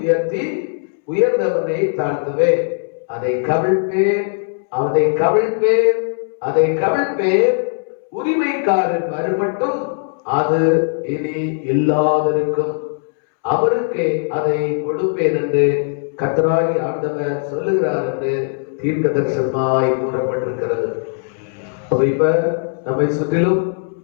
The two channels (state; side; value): silent; right; 67 dB below the other